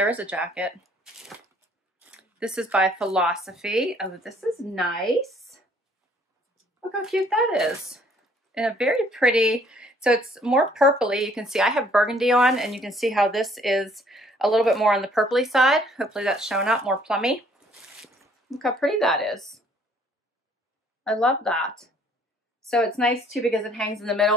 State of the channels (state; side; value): normal; both; correlation 0.61